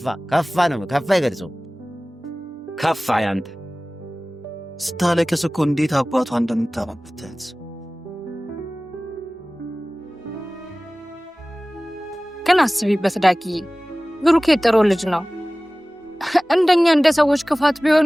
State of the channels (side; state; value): both; normal; correlation 0.98